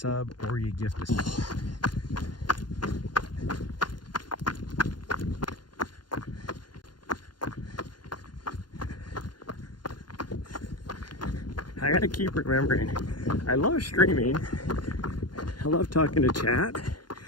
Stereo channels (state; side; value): late; right; 0.71 ms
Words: or you gift a sub. I gotta keep remembering, I love streaming, I love talking to chat,